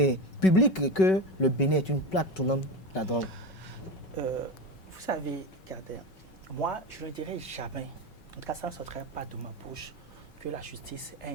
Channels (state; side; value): late; right; 5.3 ms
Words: publique, que le Bénin est une plaque tournante de la drogue? Vous savez, regardez, moi, je ne dirais jamais, en tout cas, ça ne sortirait pas de ma bouche, que la justice